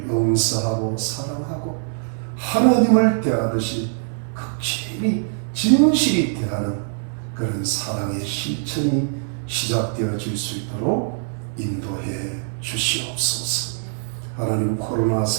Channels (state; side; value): silent; left; digital silence